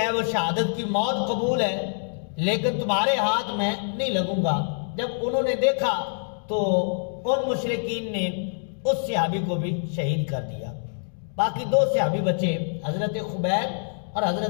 وہ شہادت کی موت قبول ہے، لیکن تمہارے ہاتھ میں نہیں لگوں گا۔ جب انہوں نے دیکھا تو ان مشرکین نے اس صحابی کو بھی شہید کر دیا۔ باقی 2 صحابی بچے، حضرت خبیب اور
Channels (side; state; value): right; silent; digital silence